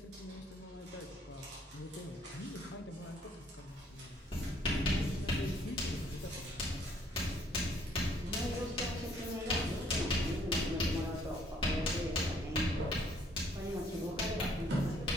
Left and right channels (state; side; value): normal; both; correlation 0.64